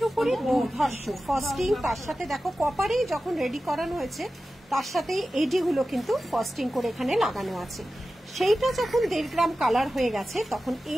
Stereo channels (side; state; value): both; normal; correlation 0.94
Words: উপরে দুর্ধর্ষ ফাস্টিং, তার সাথে দেখো কপারেই যখন রেডি করানো হয়েছে তার সাথে এডিগুলো কিন্তু ফাস্টিং করে এখানে লাগানো আছে। সেইটা যখন 1.5 গ্রাম কালার হয়ে গেছে তখন